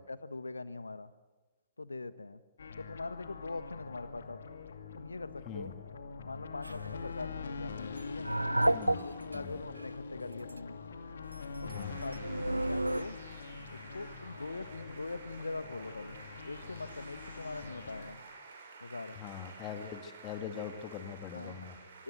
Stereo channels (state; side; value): inverted; both; correlation -0.86